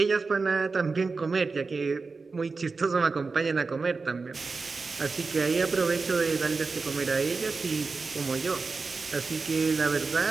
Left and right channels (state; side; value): quieter; left; 4.3 dB